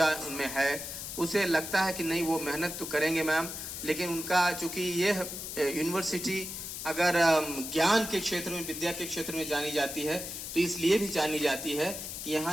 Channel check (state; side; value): noise; left; hiss, 7 dB below the sound